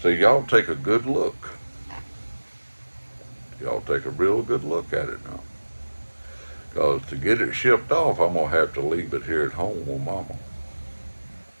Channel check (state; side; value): inverted; both; correlation -1.00